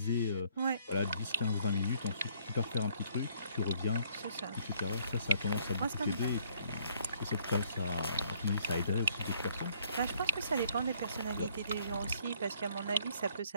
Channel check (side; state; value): both; inverted; correlation -0.64